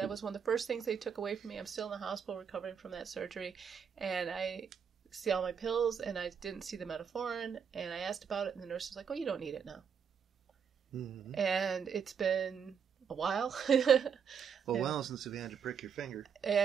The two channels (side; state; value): left; quieter; 7.1 dB